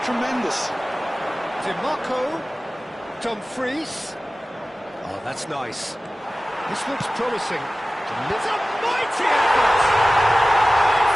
Tremendous. DiMarco, Dumfries. Oh, that's nice. This looks promising. It's a mighty effort!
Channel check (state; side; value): normal; both; correlation 0.96